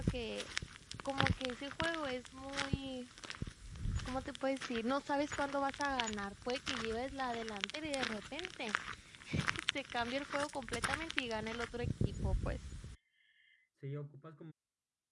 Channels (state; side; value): identical; both; correlation 1.00